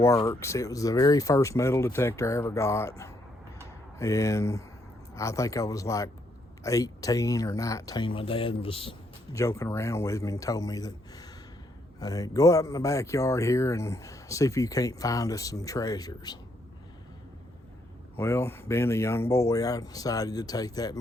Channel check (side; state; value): both; normal; correlation 0.74